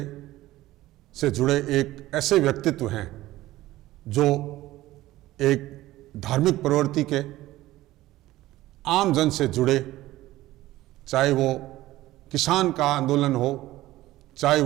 से जुड़े एक ऐसे व्यक्तित्व हैं जो एक धार्मिक प्रवृत्ति के, आम जन से जुड़े, चाहे वो किसान का आंदोलन हो, चाहे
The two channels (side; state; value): left; quieter; 16.4 dB